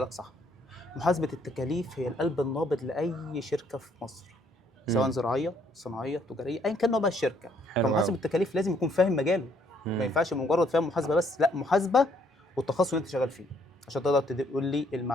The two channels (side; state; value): both; normal; correlation 0.67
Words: صح. محاسبه التكاليف هي القلب النابض لاي شركه في مصر، سواء مم. زراعيه صناعيه تجاريه ايا كان نوع بقى الشركه. حلو فمحاسب أوي. التكاليف لازم يكون فاهم مجاله، ما مم. ينفعش مجرد فاهم محاسبه بس، لا، محاسبه والتخصص اللي انت شغال فيه، عشان تقدر تقول لي